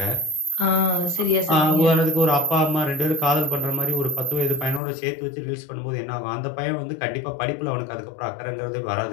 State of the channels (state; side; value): drops out; right; at 4.8 s